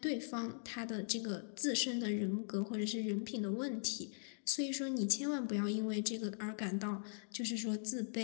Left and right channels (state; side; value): silent; right; digital silence